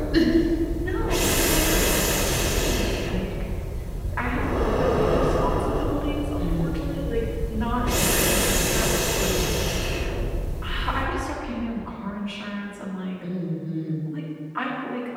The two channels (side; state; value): both; identical; correlation 1.00